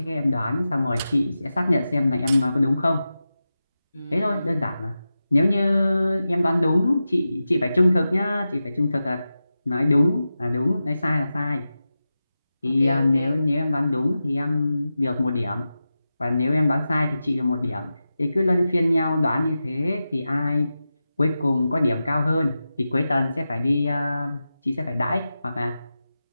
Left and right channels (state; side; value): inverted; both; correlation -0.93